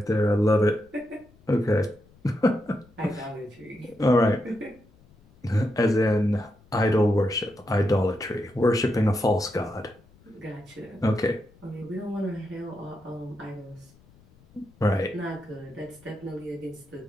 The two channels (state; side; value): noise; left; rumble, 28 dB below the sound